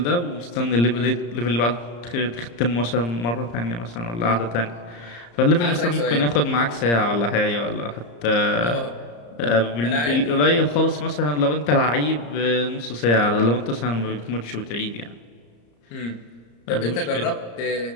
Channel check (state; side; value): late; right; 34 ms